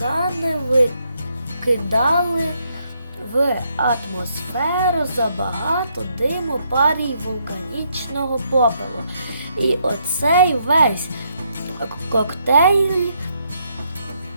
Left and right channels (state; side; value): inverted; both; correlation -0.75